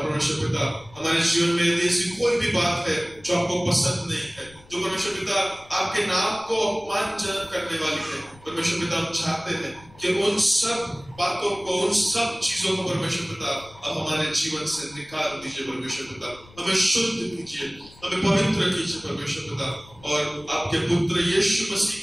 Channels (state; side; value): noise; left; rumble, 24 dB below the sound